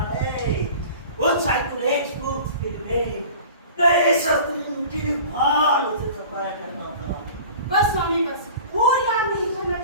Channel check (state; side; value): inverted; both; correlation -0.42